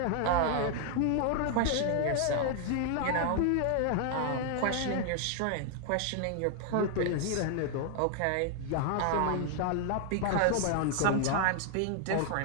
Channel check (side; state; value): both; different; correlation 0.00